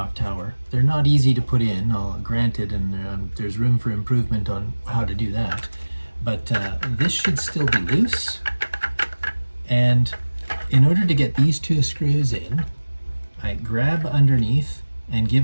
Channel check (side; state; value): both; inverted; correlation -1.00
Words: tower, they're not easy to put in, granted, and there's room for improvement on how to do that, but this should still be loose. And in order to get these 2 screws in, I grab underneath and